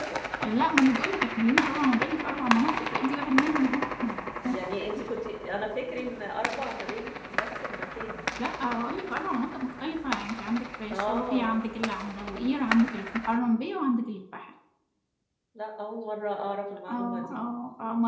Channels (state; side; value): identical; both; correlation 1.00